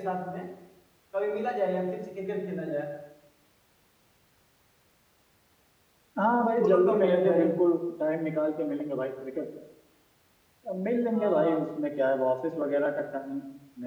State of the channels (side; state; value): both; identical; correlation 1.00